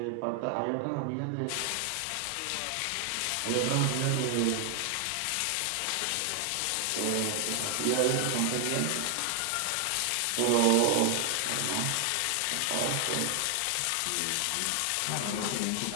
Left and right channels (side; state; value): both; different; correlation 0.00